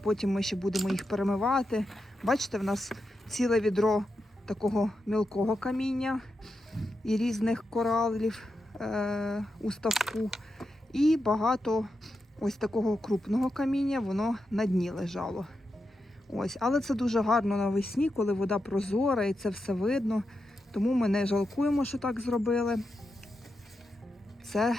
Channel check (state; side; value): normal; both; correlation 0.87